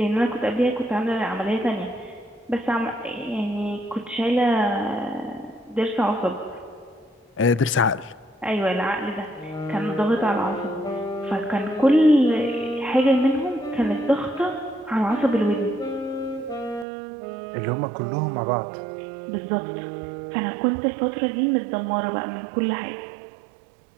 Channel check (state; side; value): drops out; left; at 16.9 s